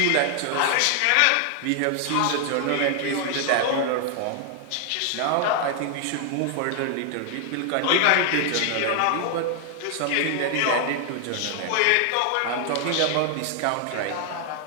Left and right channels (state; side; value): different; both; correlation 0.00